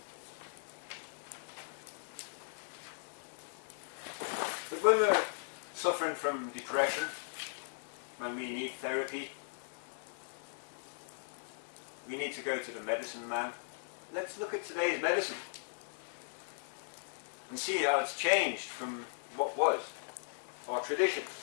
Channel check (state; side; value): silent; right; digital silence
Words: But when we're suffering from depression, when we need therapy, we need to go to the medicine man. Let's look at today's medicine and see how it's changed from what was our tradition.